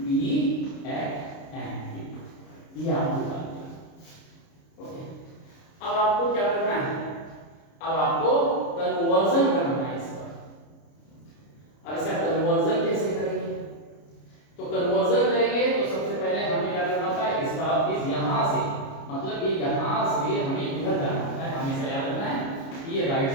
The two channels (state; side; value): late; right; 29 ms